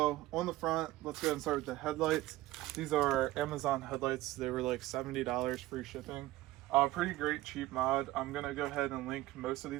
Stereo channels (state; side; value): quieter; left; 17.0 dB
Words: on the front, let's go ahead and start with the headlights. These are Amazon headlights. They were like $70 free shipping. Pretty great cheap mod. I'm gonna go ahead and link most of